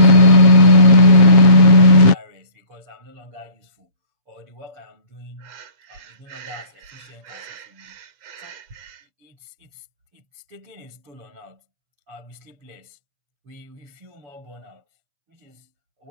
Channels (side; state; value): left; late; 7.4 ms